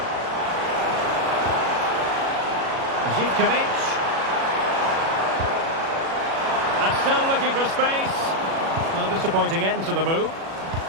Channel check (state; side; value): late; left; 36 ms